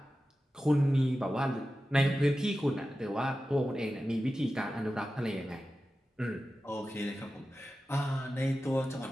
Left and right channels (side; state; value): both; normal; correlation 0.93